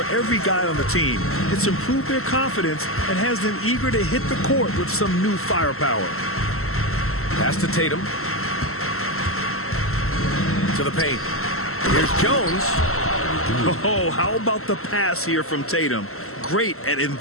every guy on the team. It's improved their confidence and has them eager to hit the court with some new firepower. Pass to Tatum. To the paint. Here's Jones. Oh, how about the pass here from Tatum? Great at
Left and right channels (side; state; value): right; late; 0.63 ms